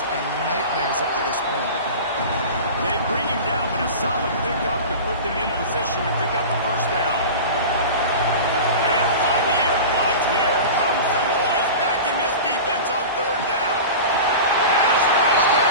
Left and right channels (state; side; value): inverted; both; correlation -0.32